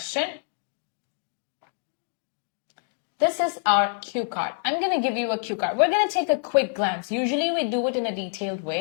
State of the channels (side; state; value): right; silent; digital silence